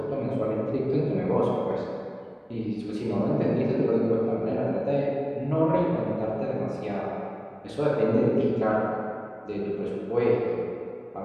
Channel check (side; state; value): both; identical; correlation 1.00